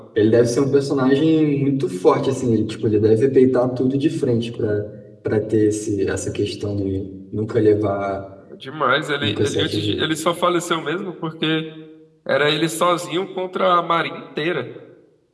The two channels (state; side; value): identical; both; correlation 1.00